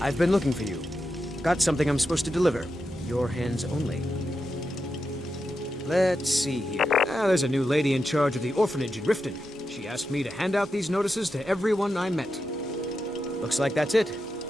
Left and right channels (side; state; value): both; normal; correlation 0.88